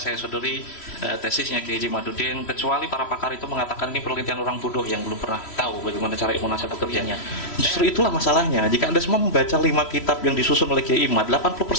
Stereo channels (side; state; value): right; late; 3.1 ms